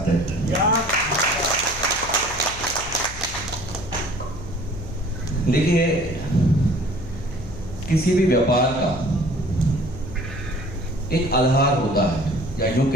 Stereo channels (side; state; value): left; noise; hum, 13 dB below the sound